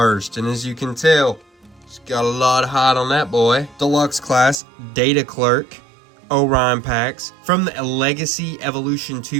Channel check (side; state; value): left; drops out; at 4.5 s